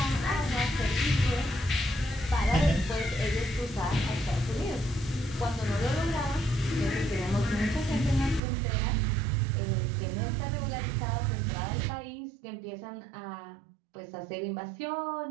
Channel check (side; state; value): left; drops out; at 8.4 s